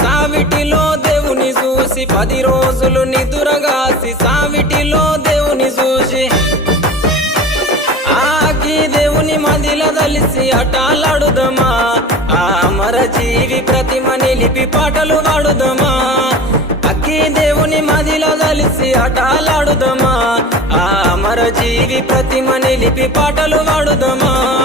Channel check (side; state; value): both; normal; correlation 0.36